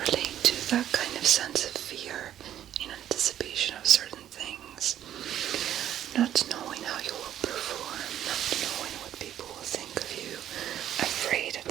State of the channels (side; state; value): left; quieter; 11.2 dB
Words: to that kind of sense of fear in anticipation of certain things. Not knowing how you will perform, not knowing what people will think of you, afraid that